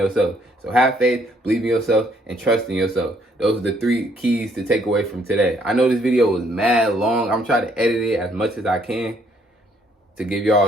So have faith, believe in yourself, and trust in yourself. Those are the three keys to take away from today. I know this video was mad long. I'm trying to edit it as much as I can to give y'all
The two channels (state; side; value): normal; both; correlation 0.67